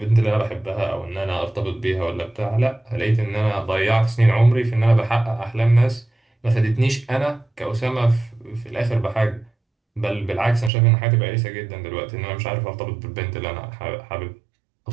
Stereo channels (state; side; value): drops out; left; at 10.7 s